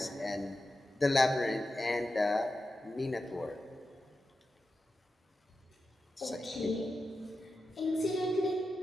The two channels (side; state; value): both; normal; correlation 0.91